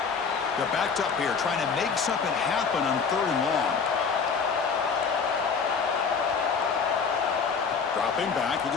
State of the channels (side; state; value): right; quieter; 5.7 dB